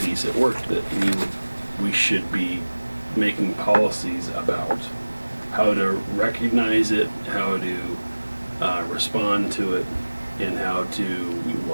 at work that we should be making policies about how to recognize it, how to respond to it, and how to,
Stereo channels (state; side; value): inverted; both; correlation -1.00